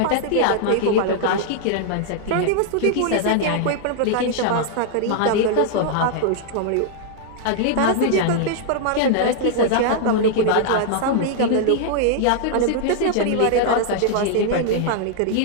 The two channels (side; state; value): both; different; correlation -0.01